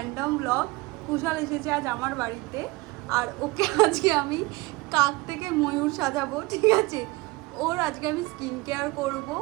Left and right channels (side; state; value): left; quieter; 23.1 dB